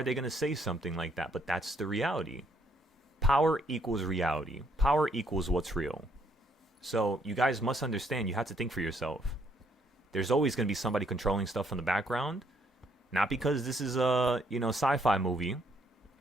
they going to say something like that? But that's the reality. Power equals reality. Power equals what's real. So you guys must understand, you have to think for yourself. There's always going to be somebody controlling stuff in the background. Not because this is a, you know, sci-fi movie,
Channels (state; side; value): normal; both; correlation 0.70